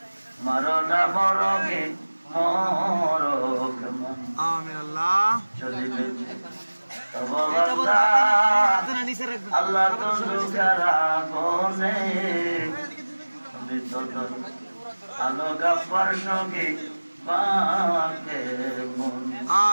মরনা মরগে মরক আমিন আল্লাহ চলিবে তব বান্দা আল্লাহ তো দুঃখেরা গনে তুমি তো আলো গাফার সঙ্গে বাকে মন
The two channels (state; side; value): inverted; both; correlation -1.00